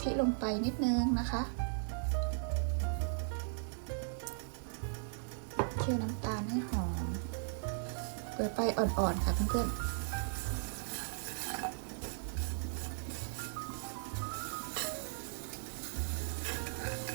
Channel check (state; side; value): silent; left; digital silence